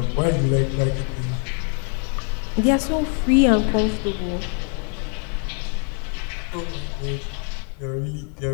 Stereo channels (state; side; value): quieter; right; 39.1 dB